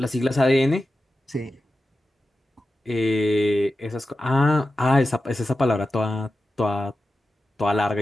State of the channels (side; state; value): both; normal; correlation 0.93